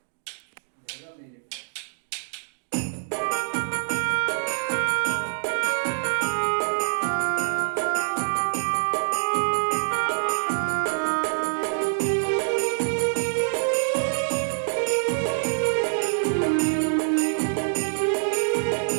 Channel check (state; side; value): silent; left; digital silence